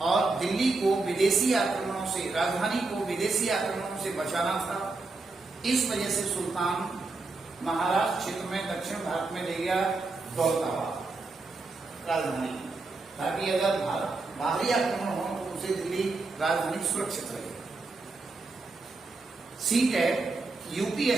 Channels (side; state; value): left; quieter; 3.6 dB